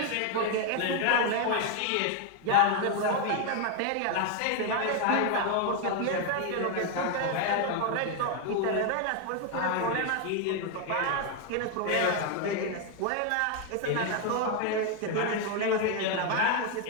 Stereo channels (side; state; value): both; different; correlation 0.01